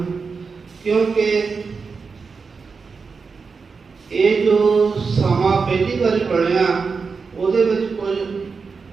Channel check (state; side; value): quieter; left; 5.0 dB